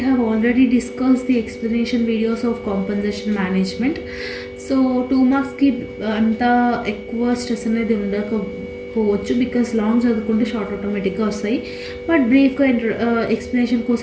have already discussed the explanation videos of compensation management. So 2 marks ki anta ఎక్కువ stress అనేది ఉండకపోవచ్చు because long చదువుకుంటే short ఆటోమేటిక్గా వస్తాయి. But బ్రీఫ్గా explanation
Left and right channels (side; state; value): both; identical; correlation 1.00